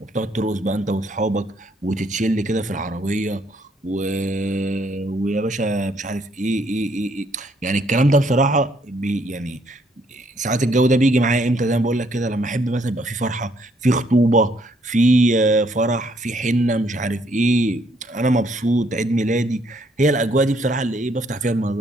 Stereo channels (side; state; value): both; normal; correlation 0.68